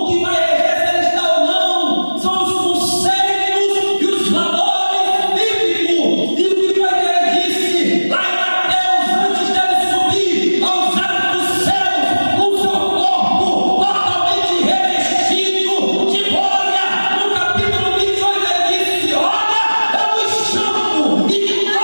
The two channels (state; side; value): inverted; both; correlation -1.00